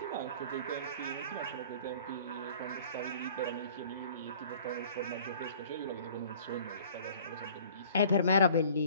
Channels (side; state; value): both; inverted; correlation -0.50